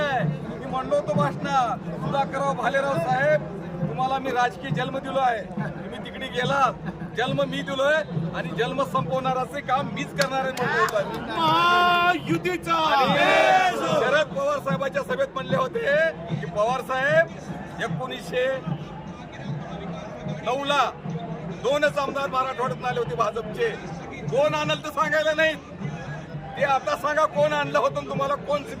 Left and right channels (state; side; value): identical; both; correlation 1.00